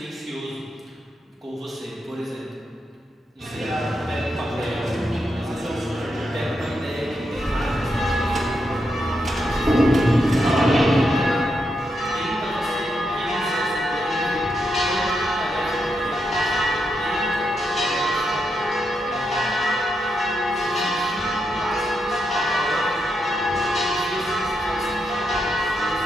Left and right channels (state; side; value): normal; both; correlation 0.83